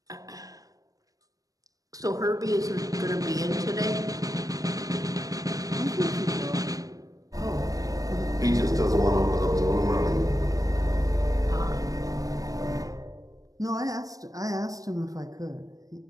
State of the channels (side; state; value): left; late; 0.17 ms